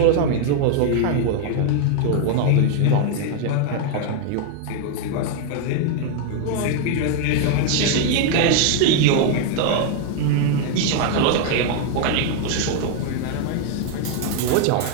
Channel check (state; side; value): different; both; correlation 0.00